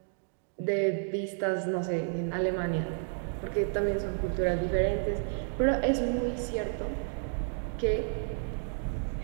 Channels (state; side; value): silent; left; 57 dB below the other